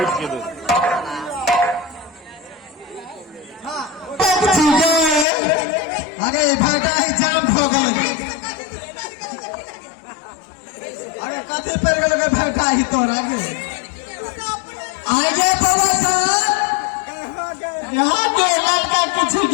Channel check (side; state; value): right; drops out; at 5.2 s